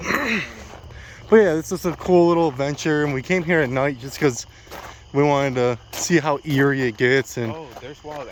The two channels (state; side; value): identical; both; correlation 1.00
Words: that. But yeah, it's just a cool little adventure, and we came here at night just because we wanted to see how eerie it gets. And Oh, there's wild